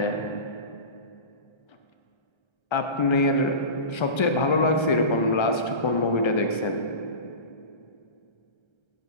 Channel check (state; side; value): late; right; 1.3 ms